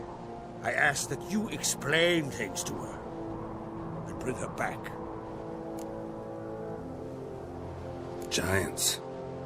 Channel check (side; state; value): both; identical; correlation 1.00